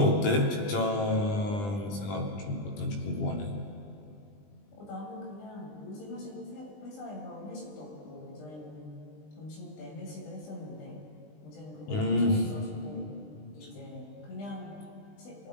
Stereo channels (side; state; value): right; late; 20 ms